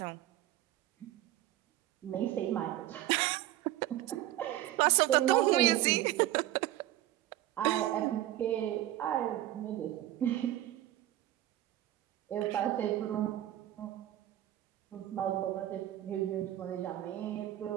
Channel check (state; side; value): quieter; left; 13.9 dB